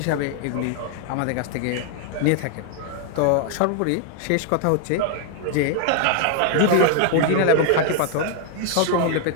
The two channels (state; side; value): different; both; correlation 0.00